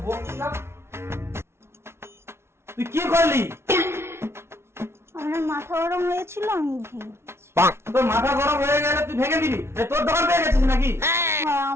তুই কি করলি? আমার মাথা গরম হয়েছিল আমি ভেঙে দিয়েছি। তোর মাথা গরম হয়ে গেলে তুই ভেঙে দিবি? তোর দোকান পেয়ে গেছিস নাকি? হ্যাঁ,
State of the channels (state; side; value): late; left; 0.12 ms